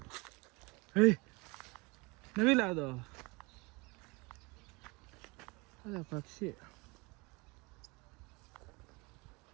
ಏಯ್ ನವಿಲ ಅದು ಅದ ಪಕ್ಷಿ.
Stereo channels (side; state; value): left; quieter; 26.6 dB